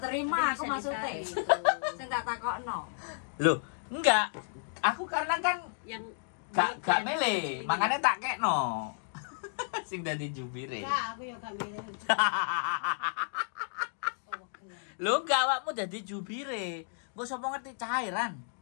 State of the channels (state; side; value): silent; right; digital silence